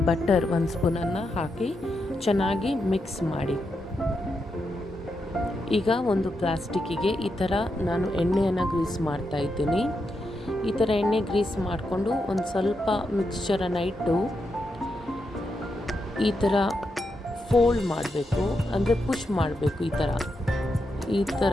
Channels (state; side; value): normal; both; correlation 0.84